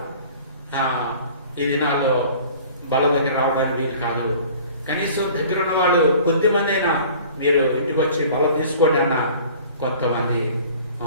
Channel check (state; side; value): inverted; both; correlation -0.47